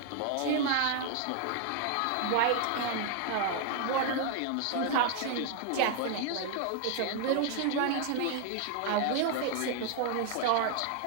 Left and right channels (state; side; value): different; both; correlation 0.00